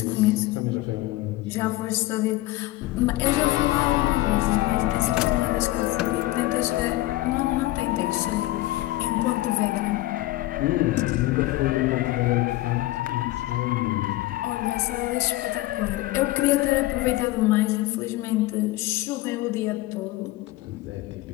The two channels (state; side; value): quieter; right; 17.6 dB